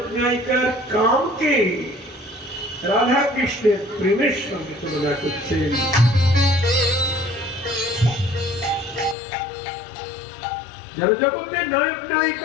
নায়িকার কামকে রাধা কৃষ্ণের প্রেমের সঙ্গে তুলনা করছেন। জগতের নায়ক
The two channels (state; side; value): drops out; right; at 9.2 s